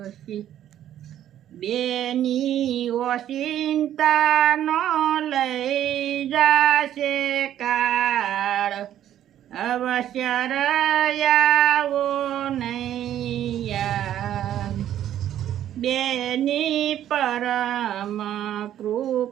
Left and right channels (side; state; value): left; quieter; 11.4 dB